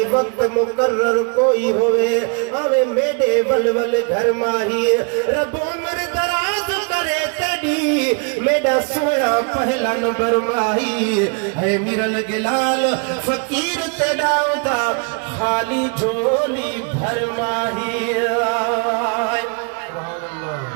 वक्त मुकर्रर कोई होवे आवे मेरे वलवल घर माही रब उम्र दराज करे तेरी मेरा सोना पहला नंबर माही है मिरल गिलाल फकीर तेरा दा खाली झोली भर माही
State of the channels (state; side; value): quieter; left; 35.7 dB